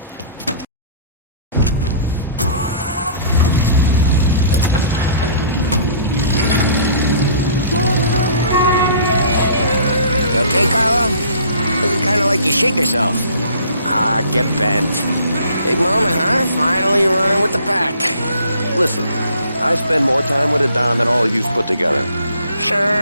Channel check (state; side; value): inverted; both; correlation -0.52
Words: You okay, Carlo? Looking kind of like you shake yourself. Ah, get bent. Big moment, huh? Finally running with the pack. Listen, I spend more time with a Don than all of you put together.